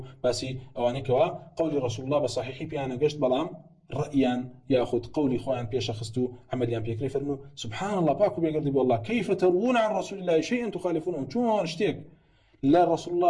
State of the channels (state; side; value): identical; both; correlation 1.00